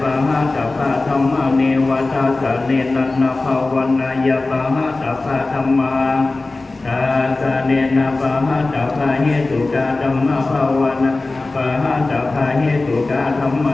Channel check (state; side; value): quieter; right; 3.3 dB